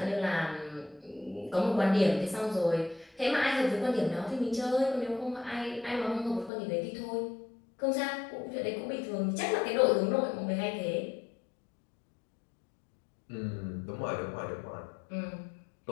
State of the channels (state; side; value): drops out; right; at 6.5 s